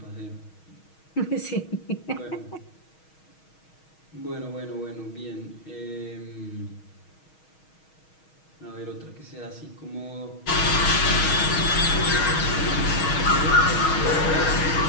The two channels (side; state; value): right; late; 6.3 ms